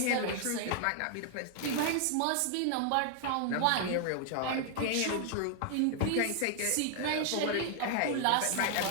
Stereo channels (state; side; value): different; both; correlation 0.00